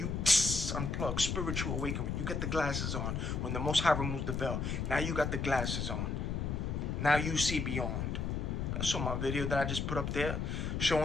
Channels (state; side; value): noise; left; rumble, 1 dB below the sound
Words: unplug, spiritual awakening. You get the glasses on. When the Most High removes the veil. Now you got the glasses on. Now you see beyond. I saw my video that I just put up there,